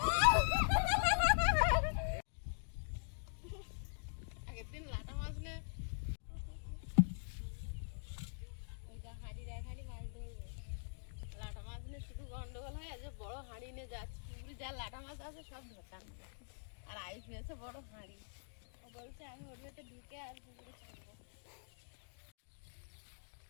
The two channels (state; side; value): silent; right; digital silence